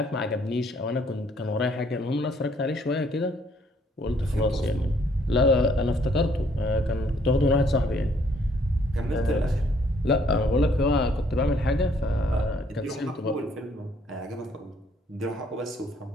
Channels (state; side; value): normal; both; correlation 0.65